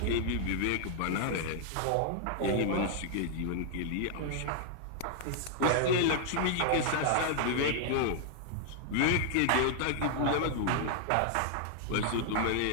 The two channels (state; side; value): different; both; correlation 0.00